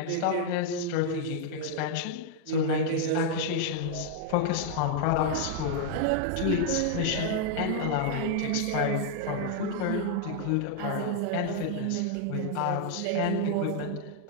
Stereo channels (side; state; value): both; different; correlation 0.00